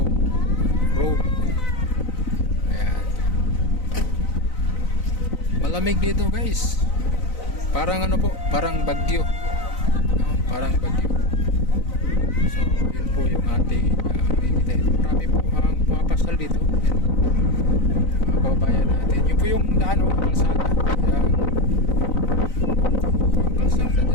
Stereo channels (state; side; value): late; right; 4.0 ms